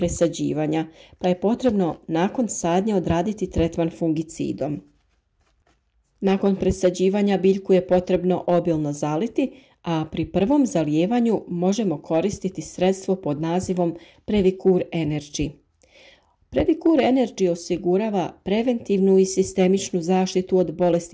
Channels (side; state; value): both; identical; correlation 1.00